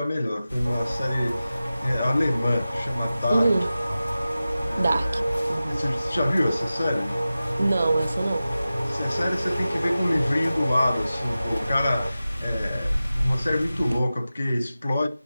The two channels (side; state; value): both; inverted; correlation -0.95